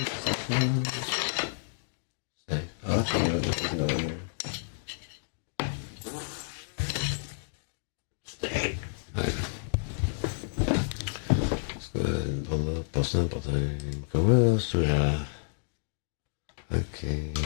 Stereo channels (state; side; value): silent; right; digital silence